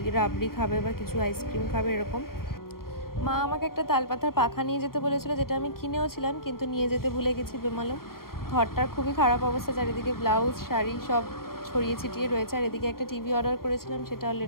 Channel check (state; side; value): late; right; 0.93 ms